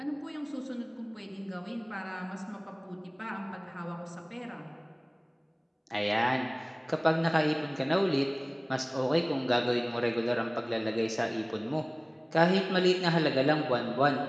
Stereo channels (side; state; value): both; identical; correlation 1.00